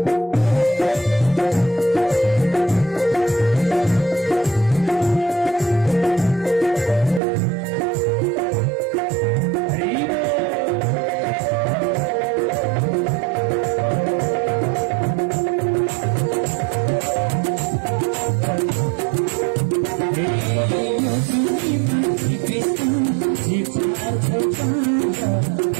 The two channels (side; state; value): left; drops out; at 7.2 s